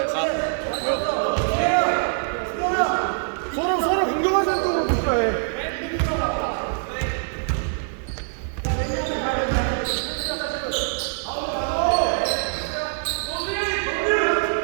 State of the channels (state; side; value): silent; left; digital silence